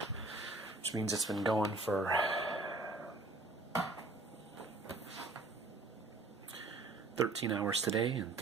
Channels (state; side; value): quieter; left; 3.2 dB